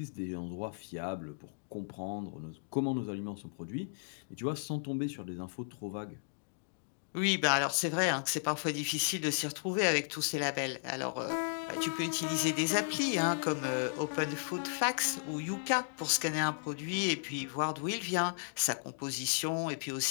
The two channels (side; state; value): right; silent; digital silence